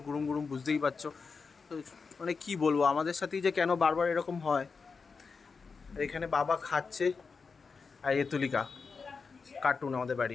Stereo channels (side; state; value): right; quieter; 5.0 dB